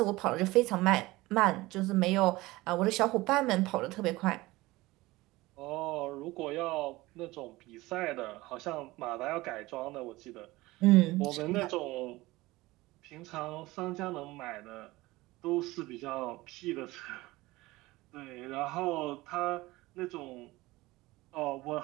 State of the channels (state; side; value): quieter; left; 19.8 dB